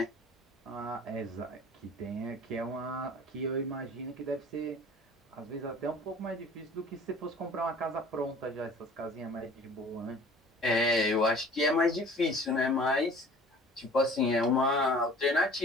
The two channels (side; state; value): both; normal; correlation 0.47